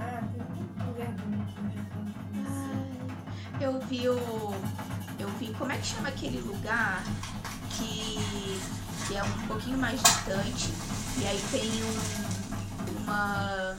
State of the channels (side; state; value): both; identical; correlation 1.00